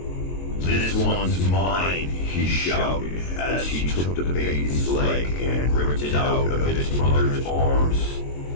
"This one's mine," he shouted as he took the baby's leg and ripped it out of its mother's arms.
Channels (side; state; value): right; late; 22 ms